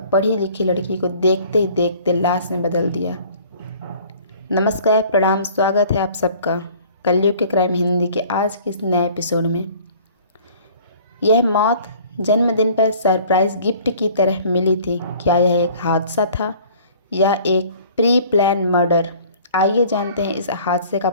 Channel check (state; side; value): inverted; both; correlation -0.51